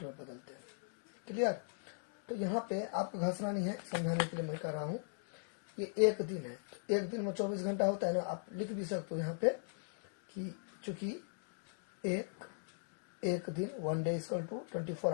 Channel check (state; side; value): silent; right; digital silence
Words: में बदलते हैं, क्लियर। तो यहाँ पे आपको घसना नहीं है, समझाने के लिए मैं कह रहा हूँ। ये एक दिन है तो एक दिन में 24 घंटा होता है ना, आप लिख भी सकते हो यहाँ पे कि चूंकि एक दिन 1 डे इक्वल टू 24